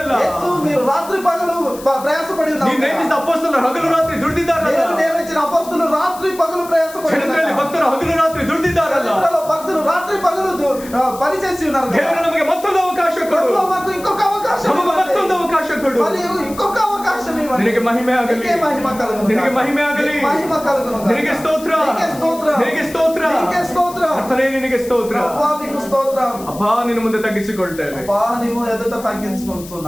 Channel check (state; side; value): noise; left; hiss, 17 dB below the sound